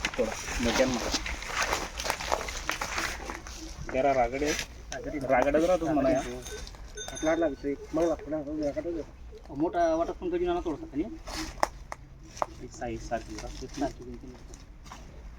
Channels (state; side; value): identical; both; correlation 1.00